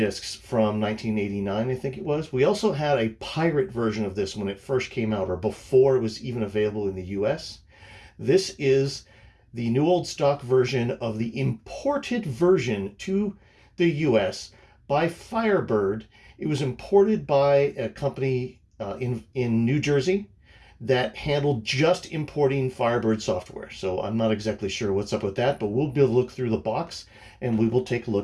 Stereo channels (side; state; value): both; identical; correlation 1.00